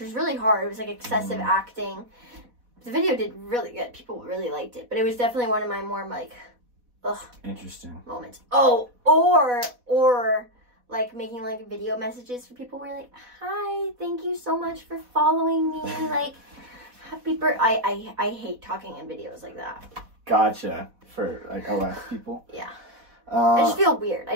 really hard. It was, like, excessive acting. The video did really good. People really liked it. But it was definitely one of my more, like, ugh. Interesting. Moments. Oh, or like, making, like, video messages for people where, like, hi, thank you so much for following me. Like, happy birthday. I hate talking in videos like that. Gotcha. For, like, OS people? Yeah. I just feel weird.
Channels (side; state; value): left; late; 4.1 ms